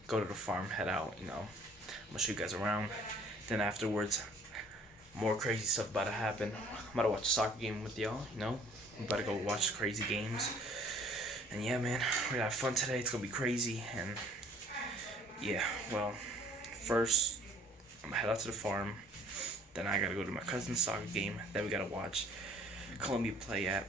go to the farm, head out, you know. I'm gonna show you guys around. Then afterwards, more crazy stuff about to happen. I'm about to watch a soccer game with y'all, you know. I'm about to go watch crazy games. And yeah, man, we're gonna have fun today. It's gonna be crazy. And yeah, well, first I'm gonna head out to the farm. Then I gotta go to my cousin's soccer game. Then we gotta watch Colombia play at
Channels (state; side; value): normal; both; correlation 0.56